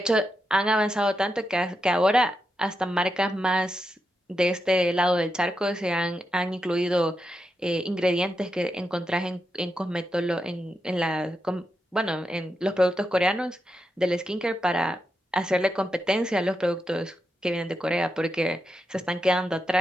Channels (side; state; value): both; normal; correlation 0.86